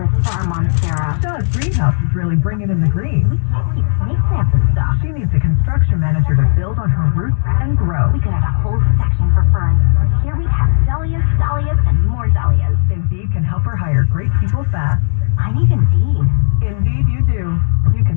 for our Monstera. Shaw's greenhouse is really bringing in the green. We can't keep snake plants and stuff. She needs a construction manager to build on her roots and grow. We could have a whole section for ferns. Here we have dahlias, and more dahlias. Indeed can help her hire great people fast. I need Indeed. Indeed you do. You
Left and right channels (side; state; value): right; silent; digital silence